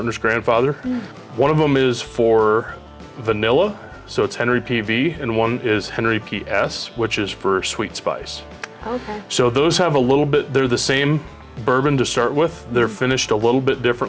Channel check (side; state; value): both; identical; correlation 1.00